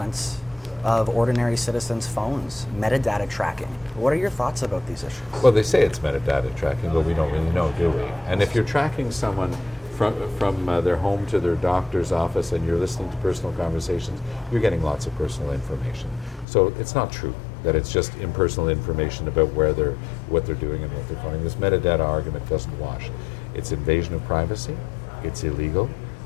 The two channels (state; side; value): drops out; right; at 16.4 s